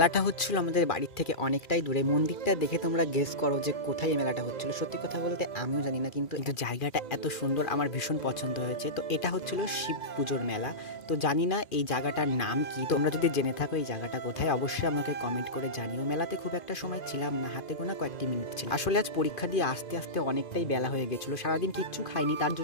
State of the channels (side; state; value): right; late; 2.4 ms